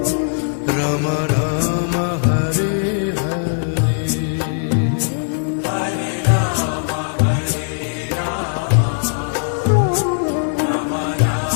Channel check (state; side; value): silent; right; 65 dB below the other